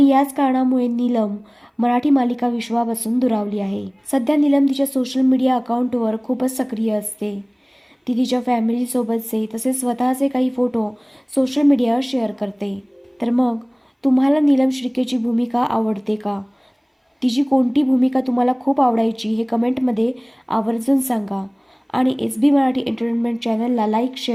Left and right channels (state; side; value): identical; both; correlation 1.00